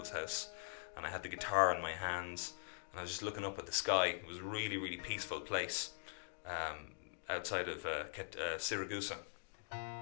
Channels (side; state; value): right; silent; digital silence